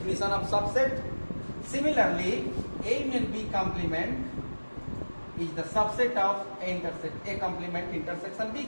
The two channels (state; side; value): inverted; both; correlation -1.00